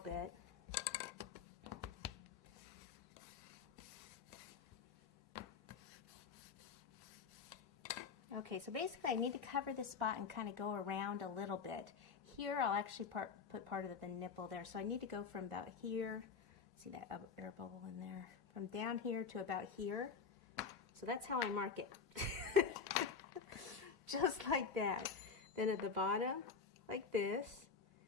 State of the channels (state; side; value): quieter; right; 5.7 dB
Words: Okay, so basically I need to cover this spot and kind of go around a little bit. Here I'll actually put part of the nipple there. So I need to go from about here, see that air bubble in there, from down here to about here. So that's how I mark it. Just like that. Then at the bottom, like this,